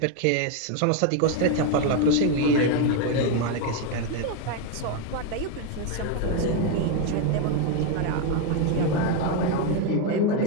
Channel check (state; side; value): different; both; correlation 0.02